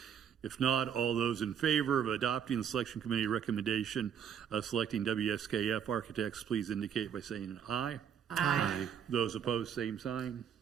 If not, all those in favor of adopting the selection committee recommendation of selecting WSKF Architects, please indicate by saying aye. Aye. Those opposed, same sign.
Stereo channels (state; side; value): quieter; left; 8.4 dB